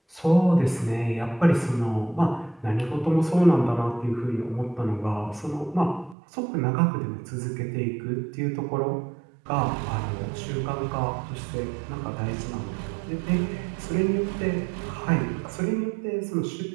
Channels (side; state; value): left; drops out; at 6.2 s